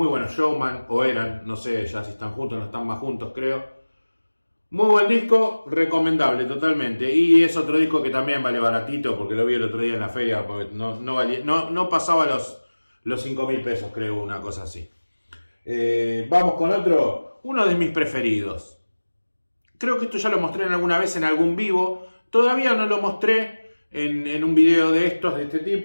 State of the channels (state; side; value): inverted; both; correlation -1.00